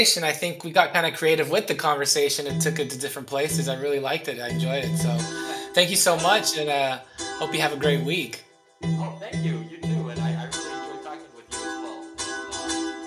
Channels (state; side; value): identical; both; correlation 1.00